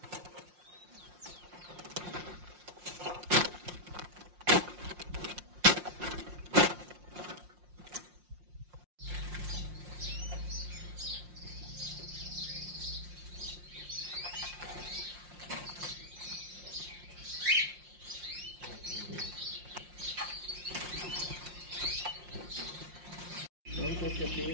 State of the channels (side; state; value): left; late; 5.6 ms